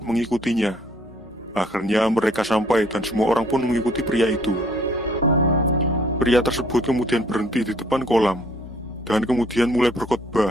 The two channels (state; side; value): normal; both; correlation 0.60